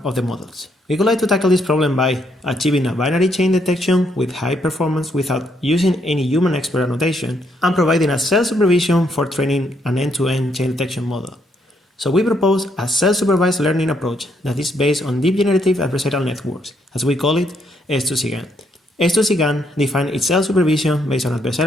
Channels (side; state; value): both; normal; correlation 0.74